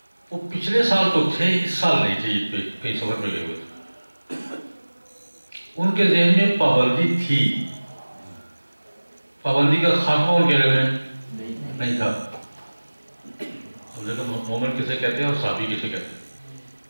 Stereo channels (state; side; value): inverted; both; correlation -1.00